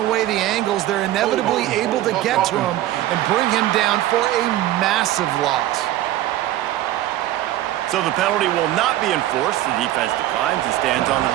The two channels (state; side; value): quieter; left; 14.2 dB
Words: the angles. They're inevitably able to get to him and bring him down for a massive loss. So the penalty will not be enforced. The defense declines and stands on the